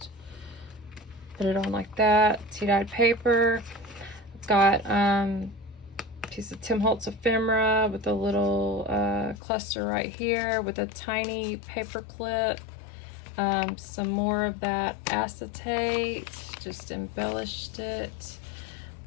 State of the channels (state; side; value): drops out; right; at 9.4 s